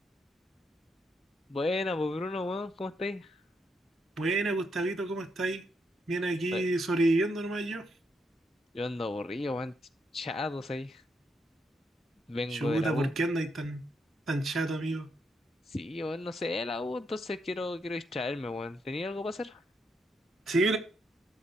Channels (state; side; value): normal; both; correlation 0.79